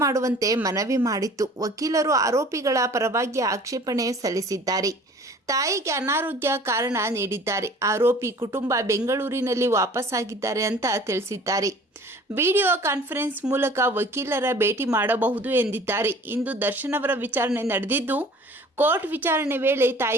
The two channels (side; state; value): both; normal; correlation 0.48